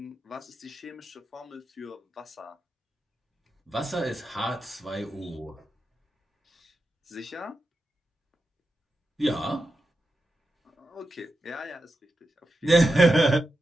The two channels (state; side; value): normal; both; correlation 0.89